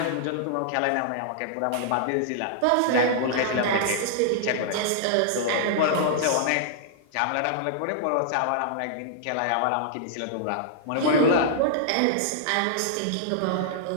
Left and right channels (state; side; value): different; both; correlation -0.01